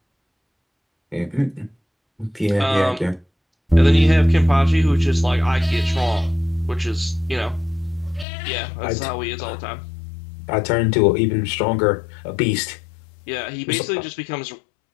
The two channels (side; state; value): right; drops out; at 8.2 s